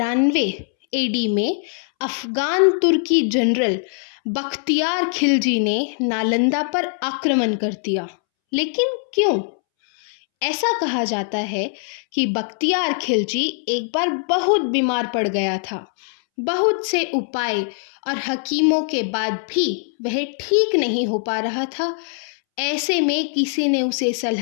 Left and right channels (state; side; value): silent; right; 65 dB below the other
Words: एडी में अफगान तुर्की जनरल बख्तियार खिलजी ने नालंदा पर आक्रमण कर दिया। लेकिन क्यों? ऐसा कहा जाता है कि बख्तियार खिलजी एक बार बहुत बीमार पड़ गया था। बहुत से उपाय और हकीमों के बाद भी वह ठीक नहीं हो पा रहा था। ऐसे में किसी ने उसे